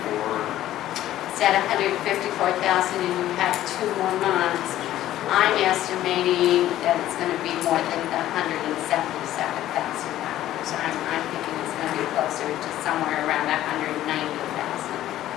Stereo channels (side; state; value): right; quieter; 13.4 dB